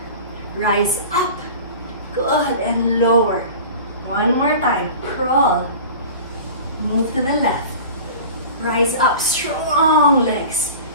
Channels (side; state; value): both; inverted; correlation -0.38